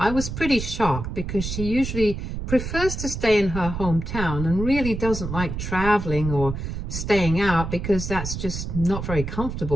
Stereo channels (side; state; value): right; noise; rumble, 6 dB below the sound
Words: was pretty shocked because she usually prefers to stay in her hometown and really doesn't like traveling or staying out because that's just not very